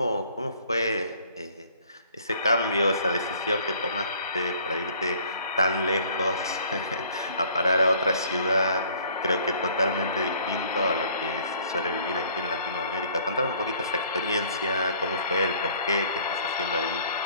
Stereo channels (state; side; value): inverted; both; correlation -0.56